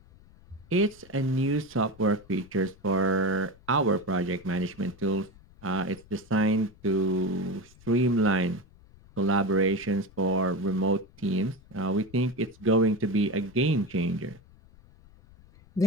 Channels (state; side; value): noise; left; rumble, 25 dB below the sound